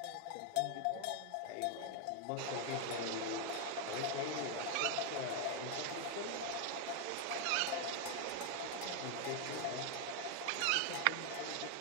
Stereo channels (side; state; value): both; different; correlation 0.01